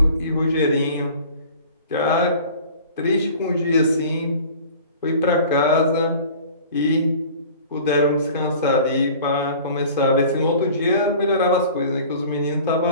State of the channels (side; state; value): both; inverted; correlation -0.44